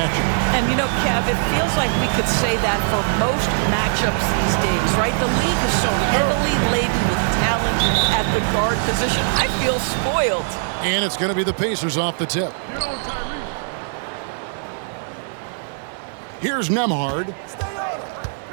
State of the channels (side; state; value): left; silent; digital silence